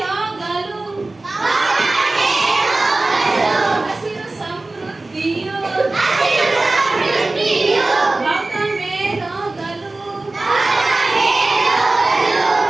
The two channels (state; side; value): quieter; left; 3.1 dB